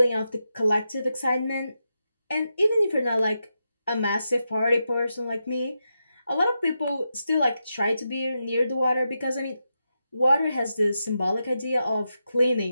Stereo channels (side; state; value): both; inverted; correlation -0.87